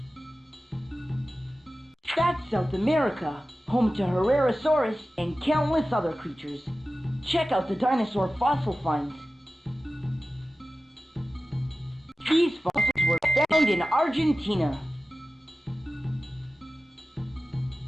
That's South America, home to Herrerasaurus and countless other creatures. Check out the dinosaur fossil finds. These fossils were found in Argentina.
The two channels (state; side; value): normal; both; correlation 0.95